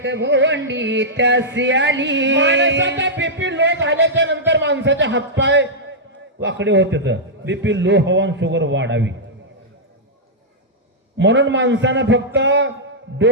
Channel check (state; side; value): normal; both; correlation -0.09